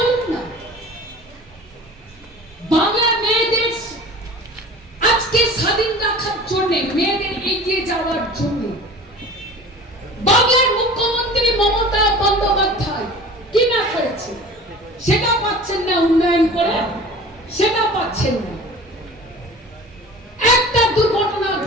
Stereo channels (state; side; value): normal; both; correlation 0.41